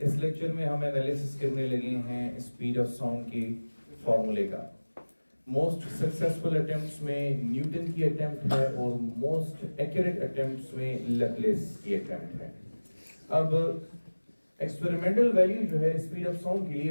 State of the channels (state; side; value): inverted; both; correlation -1.00